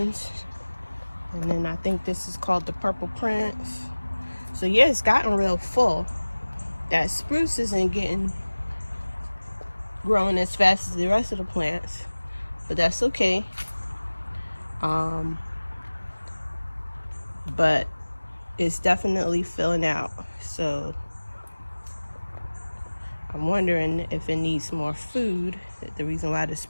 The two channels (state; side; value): inverted; both; correlation -1.00